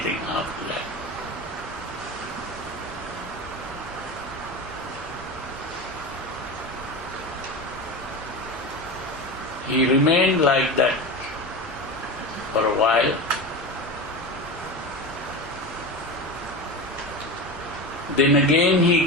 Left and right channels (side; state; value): both; normal; correlation 0.25